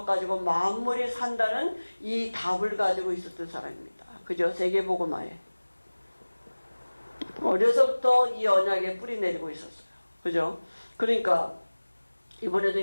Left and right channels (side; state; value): both; inverted; correlation -1.00